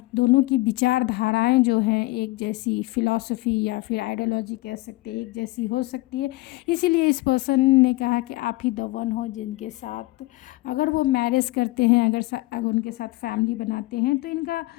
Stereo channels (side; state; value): right; quieter; 20.5 dB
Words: दोनों की विचारधाराएं जो हैं एक जैसी, फिलॉसफी या फिर आइडियोलॉजी कह सकते हैं, एक जैसी हो सकती है। इसीलिए इस पर्सन ने कहा कि आप ही द वन हो जिनके साथ अगर वो मैरिज करते हैं, अगर उनके साथ फैमिली बनाते हैं तो इनका